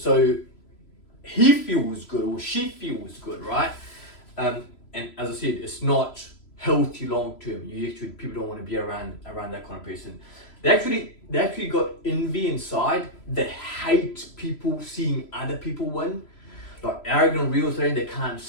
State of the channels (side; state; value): right; late; 3.0 ms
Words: he feels good or she feels good, right? And as I said, it's not healthy long term. People don't want to be around that kind of person. they actually got envy inside. They hate people seeing other people win. Like arrogant real estate, they can't